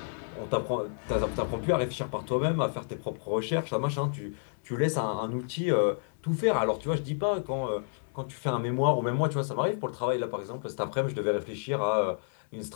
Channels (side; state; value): right; silent; 58 dB below the other